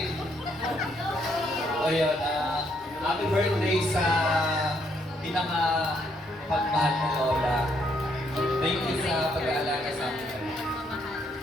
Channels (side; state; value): both; normal; correlation 0.72